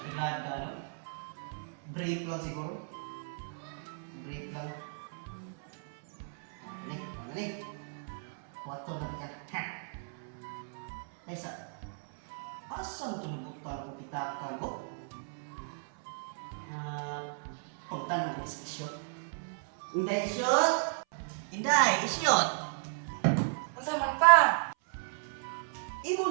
no? Brief lang siguro. Brief lang. Ano? Wato lang ka. Ha! Ay sa... Asan ito nabutan ko pitakan ko? Pagtan ng isyot. Inday isyot! Inday isyot! Ang saman pa!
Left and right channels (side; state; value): left; silent; 55 dB below the other